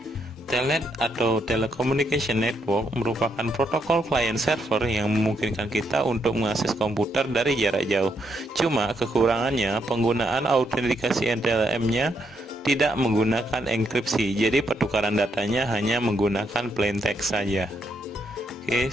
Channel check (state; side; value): normal; both; correlation 0.77